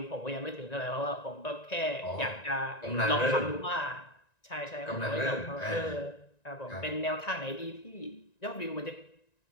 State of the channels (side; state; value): right; late; 1.9 ms